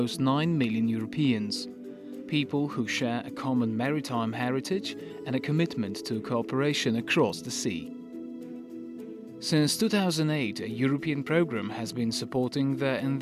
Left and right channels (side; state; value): both; identical; correlation 1.00